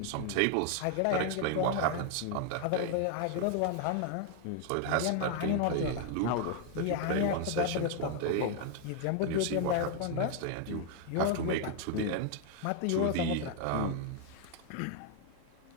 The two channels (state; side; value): different; both; correlation 0.00